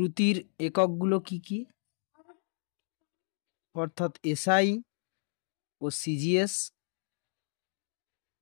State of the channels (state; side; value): silent; right; digital silence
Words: এককগুলো কি কি, অর্থাৎ এসআই ও সিজিএস,